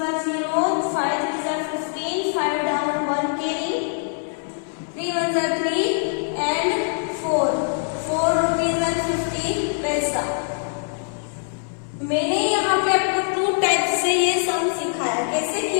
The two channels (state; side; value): silent; right; 58 dB below the other